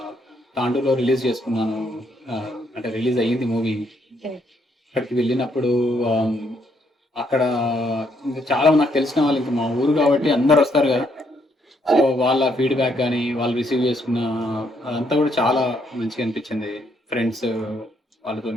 తాండూరులో రిలీజ్ చేసుకున్నాను. అంటే రిలీజ్ అయ్యింది మూవీ. ఓకే. అక్కడికి వెళ్ళినప్పుడు ఆమ్, అక్కడ ఇంకా చాలా నాకు తెలిసిన వాళ్ళు, ఇంకా మా ఊరు కాబట్టి అందరు వస్తారు కదా. సో వాళ్ళ ఫీడ్బ్యాక్ కానీ వాళ్ళు రిసీవ్ చేసుకున్న అదంతా కూడా చాలా మంచిగా అనిపించింది. ఫ్రెండ్స్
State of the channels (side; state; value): both; normal; correlation 0.72